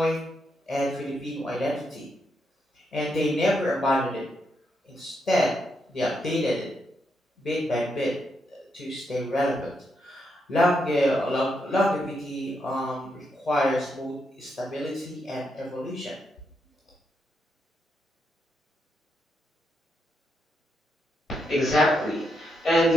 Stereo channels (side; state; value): both; normal; correlation 0.81